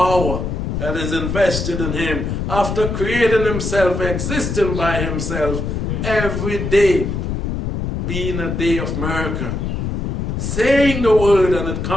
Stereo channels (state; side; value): noise; left; rumble, 3 dB below the sound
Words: that is invested in him. After creating himself, existing by himself, every day being a day of miracle. Saying the word and it